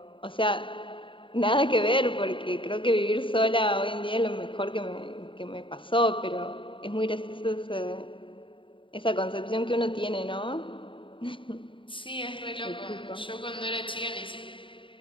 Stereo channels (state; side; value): late; right; 0.25 ms